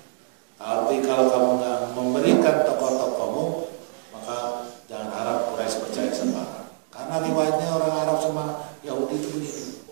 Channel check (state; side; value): silent; left; digital silence